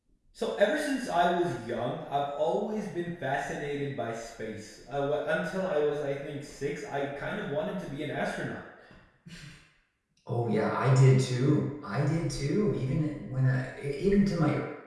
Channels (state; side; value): identical; both; correlation 1.00